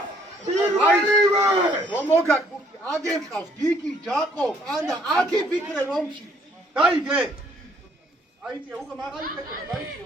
პირველივე რომ მოგაკურთი აგერ ყავს გიგი ჯაკო ანა აკი ფიქრე რომში დაიგე აიწე უკვე მაღალი ფიქრე დაიწე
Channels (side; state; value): both; normal; correlation 0.64